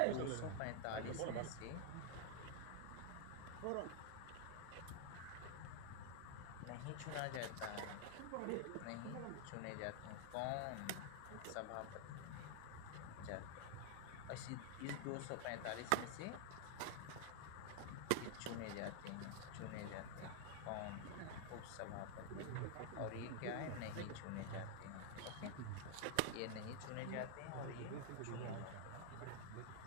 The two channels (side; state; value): both; different; correlation 0.00